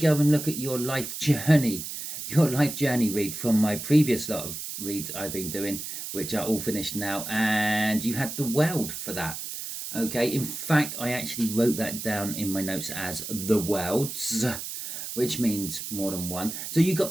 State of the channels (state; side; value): noise; right; hiss, 7 dB below the sound